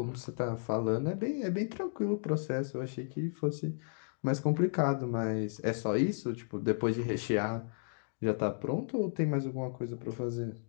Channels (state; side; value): silent; right; digital silence